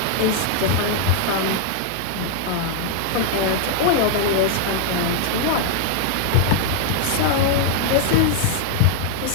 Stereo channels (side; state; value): both; different; correlation 0.00